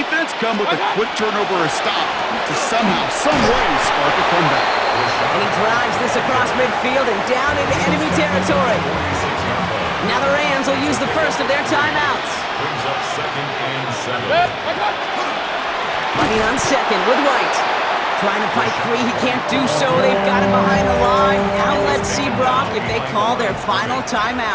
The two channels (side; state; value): both; identical; correlation 1.00